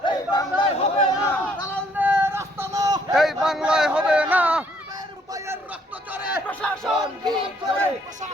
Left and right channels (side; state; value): both; normal; correlation 0.66